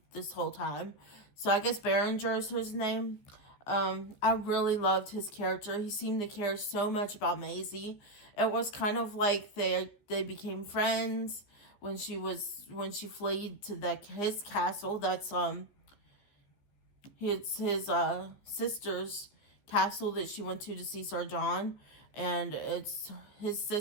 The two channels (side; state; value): right; late; 15 ms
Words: this whole time. So I guess Berenger is his name. I really loved his character. He seemed to care so much about Maisie. It was kind of like they became friends when she fled to his castle. That's his sister's castle that she went to see Sir John, and it's his